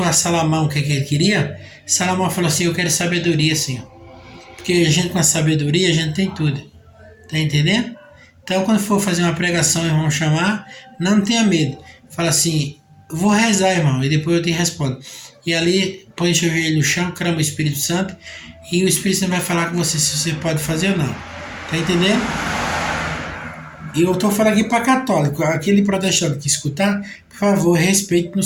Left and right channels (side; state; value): both; identical; correlation 1.00